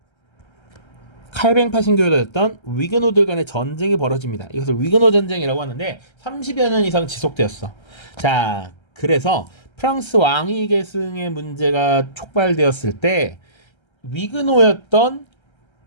칼뱅파 신교였던 위그노들 간의 전쟁이 벌어집니다. 이것을 위그노 전쟁이라고 하는데 30여 년 이상 지속되었어. 자, 그래서 프랑스 왕위 계승의 문제가 촉발되었을 때 위그노였던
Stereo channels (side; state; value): right; late; 1.3 ms